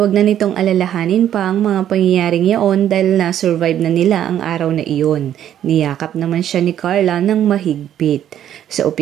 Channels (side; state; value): left; quieter; 10.7 dB